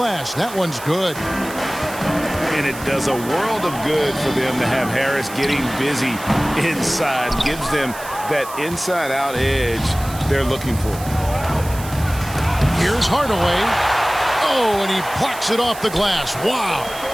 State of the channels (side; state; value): right; noise; hiss, 14 dB below the sound